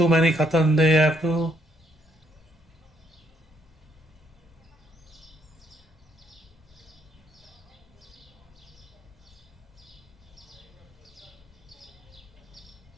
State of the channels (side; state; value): both; normal; correlation 0.72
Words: many cartons, they have to.